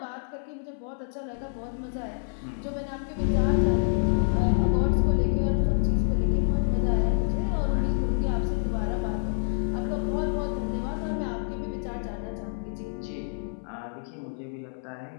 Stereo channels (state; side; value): silent; right; 60 dB below the other